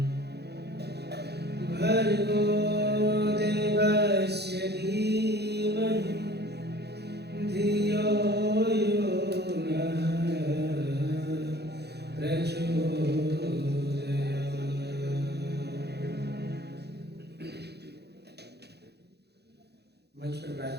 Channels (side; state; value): left; late; 0.48 ms